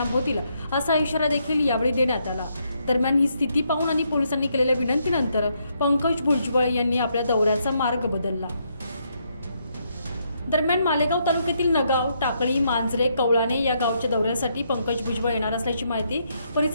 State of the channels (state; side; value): inverted; both; correlation -0.76